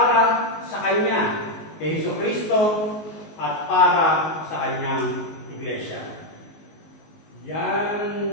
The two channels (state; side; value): late; right; 19 ms